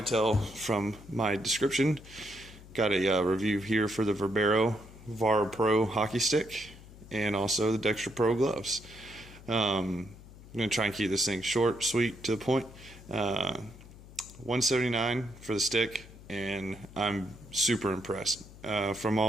tell from my description, got a review here for the Verbero hockey stick and also the Dexter Pro gloves. I'm going to try and keep this thing short, sweet, to the point. $179 for the stick, and I'm super impressed. From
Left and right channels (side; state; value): left; noise; hum, 19 dB below the sound